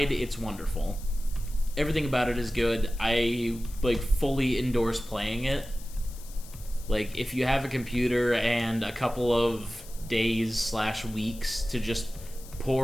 It's wonderful. Everything about it is good. I like fully endorse playing it. Like, if you have a computer and a couple of days/weeks to just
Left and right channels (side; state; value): left; noise; hiss, 19 dB below the sound